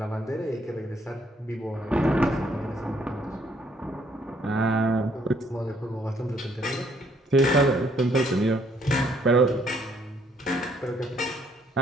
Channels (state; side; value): normal; both; correlation 0.67